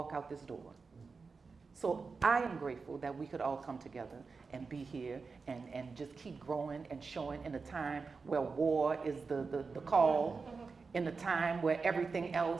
out this door. So I am grateful that we could all come together and be here and just keep growing and showing in a time where war is the call, in a time where everything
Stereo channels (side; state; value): left; quieter; 4.6 dB